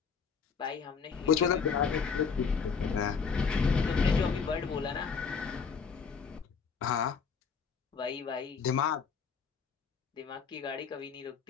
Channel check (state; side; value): quieter; right; 5.8 dB